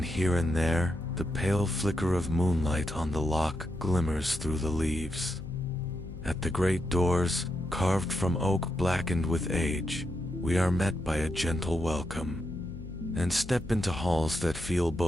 here and there, the pale flicker of moonlight on the loch glimmers through the leaves. At the great doors, carved from oak blackened with age, we are met by a gentle welcome, and step into halls that feel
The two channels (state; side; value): noise; left; hum, 12 dB below the sound